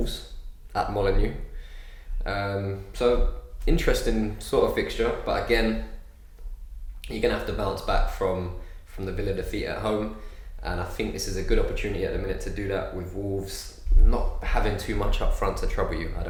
at Molineux. So interesting sort of fixture, but again, you're going to have to bounce back from the Villa defeat at home, and I think this is a good opportunity at the minute to do that with Wolves not having too much up front to trouble you, I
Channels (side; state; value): both; identical; correlation 1.00